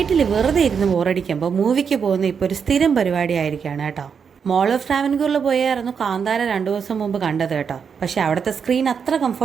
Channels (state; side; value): quieter; left; 6.6 dB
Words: വെറുതെ ഇരുന്ന് ബോറടിക്കുമ്പോൾ മൂവിക്ക് പോകുന്ന ഇപ്പോൾ ഒരു സ്ഥിരം പരിപാടിയായിരിക്കുകയാണ് കേട്ടോ. മോൾ ഓഫ് ട്രാവൻകൂറിൽ പോയായിരുന്നു കാന്താര 2 ദിവസം മുമ്പ് കണ്ടത് കേട്ടോ. പക്ഷേ അവിടുത്തെ സ്ക്രീൻ അത്ര